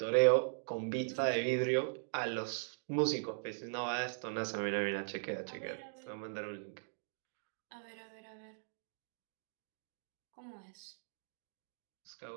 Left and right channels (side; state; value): left; silent; digital silence